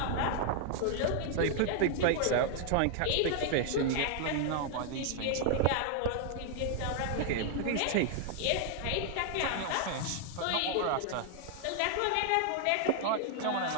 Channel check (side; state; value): both; different; correlation 0.00